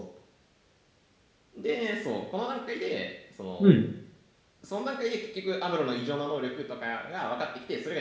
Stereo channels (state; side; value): identical; both; correlation 1.00